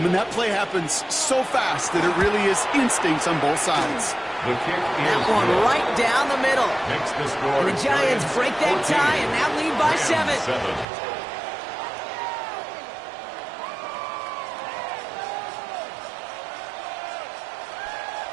and that play happens so fast that it really is instincts on both sides. The kick That one right down the middle. makes the score. And the Giants break that 14, tie and now lead by 7.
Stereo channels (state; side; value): drops out; left; at 10.9 s